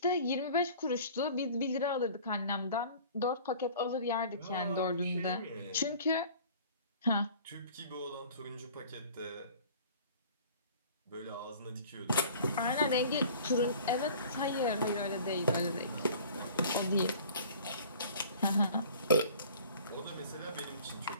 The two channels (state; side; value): inverted; both; correlation -0.47